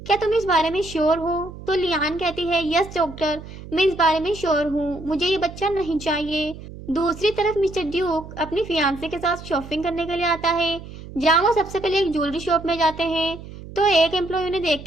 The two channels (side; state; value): right; noise; hum, 14 dB below the sound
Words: क्या तुम इस बारे में श्योर हो। तो लियान कहती है, यस डॉक्टर, मैं इस बारे में श्योर हूँ, मुझे ये बच्चा नहीं चाहिए। दूसरी तरफ मिस्टर ड्यूक अपनी फियांसे के साथ शॉपिंग करने के लिए आता है, जहाँ वो सबसे पहले एक ज्वेलरी शॉप में जाते हैं। तो एक एम्प्लॉय उन्हें देख